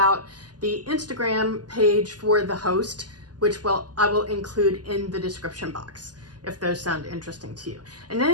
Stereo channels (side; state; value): left; late; 0.70 ms